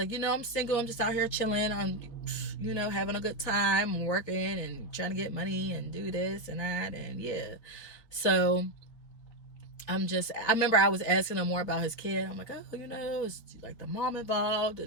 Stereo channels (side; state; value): right; late; 3.9 ms